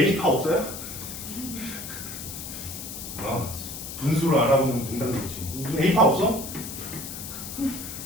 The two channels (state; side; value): noise; left; hiss, 9 dB below the sound